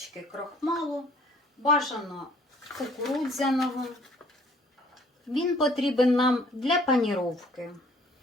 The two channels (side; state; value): both; normal; correlation 0.57